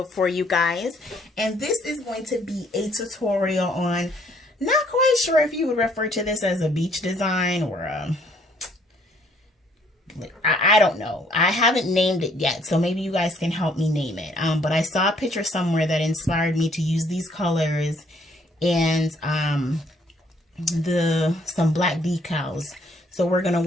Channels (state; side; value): normal; both; correlation 0.64